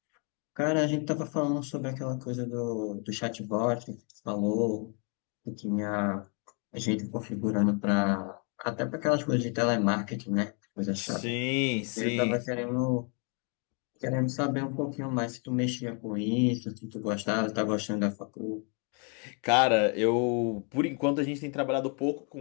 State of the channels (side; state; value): right; quieter; 37.1 dB